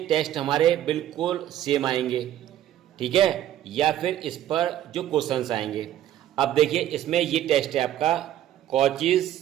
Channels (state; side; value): quieter; left; 12.0 dB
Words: टेस्ट हमारे बिल्कुल सेम आएंगे, ठीक है, या फिर इस पर जो क्वेश्चंस आएंगे। अब देखिए, इसमें ये टेस्ट है आपका